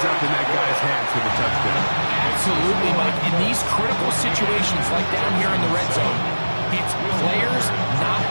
up in that guy's hands for the touchdown. Absolutely, Mike. In these critical situations, like down here in the red zone, it's players, not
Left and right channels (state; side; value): inverted; both; correlation -1.00